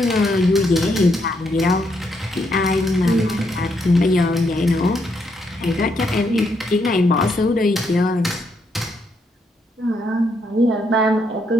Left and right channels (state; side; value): normal; both; correlation 0.76